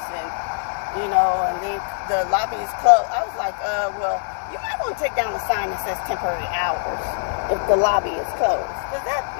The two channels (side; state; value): right; silent; digital silence